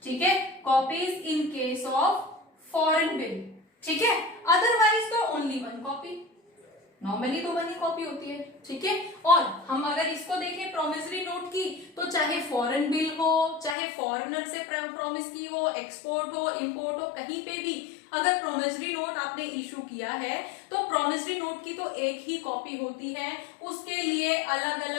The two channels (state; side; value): drops out; right; at 13.8 s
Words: ठीक है, copies in case of foreign bill. ठीक है, अदरवाइज तो ओनली 1 कॉपी, नॉर्मली तो 1 ही कॉपी होती है। ठीक है, और हम अगर इसको देखें प्रोमिसरी नोट की, तो चाहे फॉरेन बिल हो, चाहे फॉरेनर से प्रॉमिस की हो, एक्सपोर्ट हो, इंपोर्ट हो, कहीं पे भी अगर प्रोमिसरी नोट आपने इशू किया है, तो प्रोमिसरी नोट की तो एक ही कॉपी होती है। उसके लिए अलग